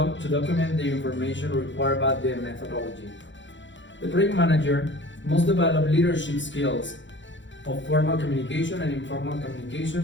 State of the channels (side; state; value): right; late; 0.54 ms